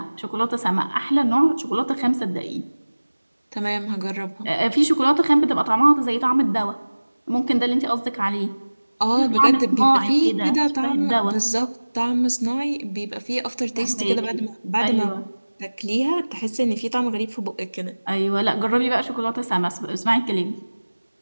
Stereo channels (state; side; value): inverted; both; correlation -1.00